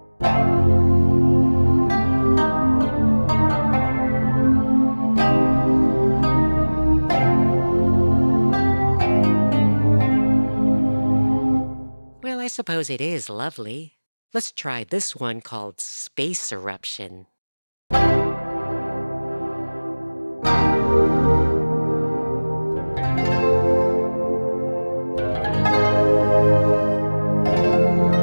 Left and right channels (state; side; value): inverted; both; correlation -1.00